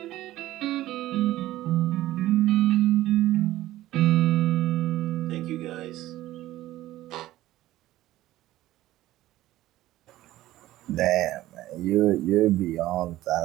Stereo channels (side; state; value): left; quieter; 15.5 dB